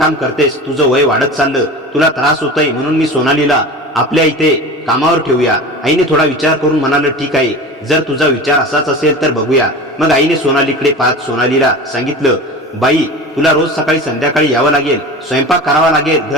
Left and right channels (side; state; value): both; normal; correlation 0.33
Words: करतेस, तुझं वय वाढत चाललं, तुला त्रास होतोय, म्हणून मी सोनालीला आपल्या इथे कामावर ठेवूया। आईने थोडा विचार करून म्हणालं, ठीक आहे, जर तुझा विचार असाच असेल तर बघूया। मग आईने सोनालीकडे पाहत सोनालीला सांगितलं, बाई, तुला रोज सकाळी संध्याकाळी यावं लागेल, स्वयंपाक करावा लागेल,